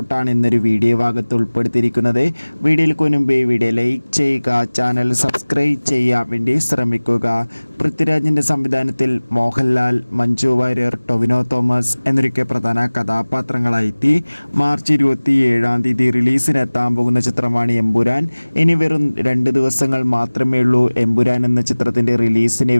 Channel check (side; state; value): both; inverted; correlation -1.00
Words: ഇന്നൊരു വീഡിയോ ഭാഗത്ത് ഉൾപ്പെടുത്തിയിരിക്കുന്നത്. വീഡിയോയിൽ മുൻപേ വീഡിയോ ലൈക്ക് ചെയ്യുക, ചാനൽ സബ്സ്ക്രൈബ് ചെയ്യാൻ വേണ്ടി ശ്രമിക്കുക. പൃഥ്വിരാജിൻ്റെ സംവിധാനത്തിൽ മോഹൻലാൽ, മഞ്ജു വാര്യർ, ടൊവിനോ തോമസ് എന്നൊക്കെ പ്രധാന കഥാപാത്രങ്ങളായി മാർച്ച് 27 റിലീസിനെത്താൻ പോകുന്ന ചിത്രമാണ് എമ്പുരാൻ. ഇനി വെറും 2 ദിവസങ്ങൾ മാത്രമേ ഉള്ളൂ എമ്പുരാൻ എന്ന ചിത്രത്തിൻ്റെ റിലീസിന്